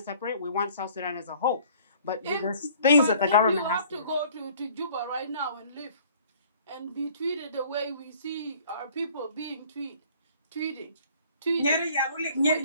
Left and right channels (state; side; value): inverted; both; correlation -0.54